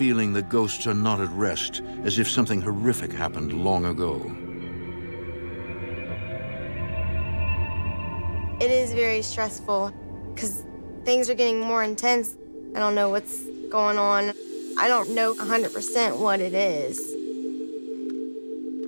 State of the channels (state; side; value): inverted; both; correlation -1.00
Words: the ghosts are not at rest, as if something horrific happened long ago. It is very stressful because things are getting more intense. I don't know what's going on. I don't know 100% what it is.